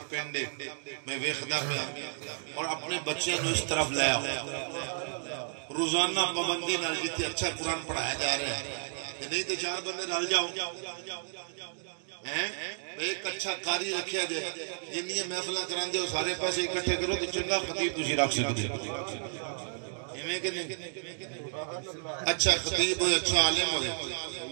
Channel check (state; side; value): silent; left; digital silence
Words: پینڈے میں ویخدہ پہ اور اپنے بچے نو اس طرف لے آؤ. روزانہ پابندی نال جتنے اچھا قرآن پڑھایا جا رہا ہے، نہیں تو چار بندے رل جاؤ، ایک اچھا قاری رکھیا جائے. جنہیں محفلہ کران دے ہو سارے پیسے اکٹھے کرو تو چنگا خطیب تجھے رکھ سکتے. اچھا خطیب ہوئے، اچھا عالم ہوئے،